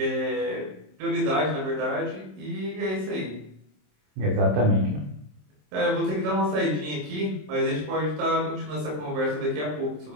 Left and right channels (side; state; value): left; late; 27 ms